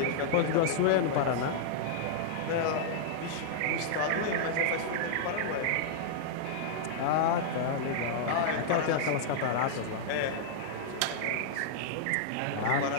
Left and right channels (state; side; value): different; both; correlation -0.01